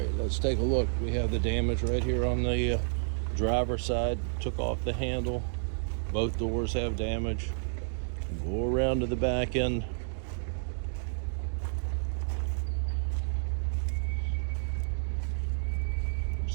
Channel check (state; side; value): silent; left; digital silence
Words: let's take a look. We have the damage right here on the driver's side. Took off the handle. Both doors have damage. Go around to the back end.